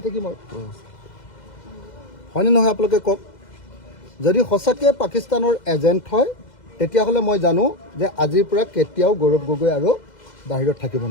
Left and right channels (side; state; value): right; late; 2.0 ms